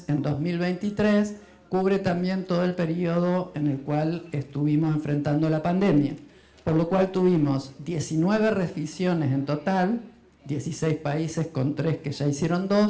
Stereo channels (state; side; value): identical; both; correlation 1.00